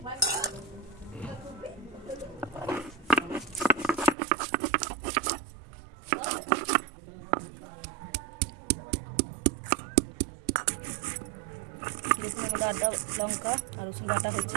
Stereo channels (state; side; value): drops out; left; at 4.2 s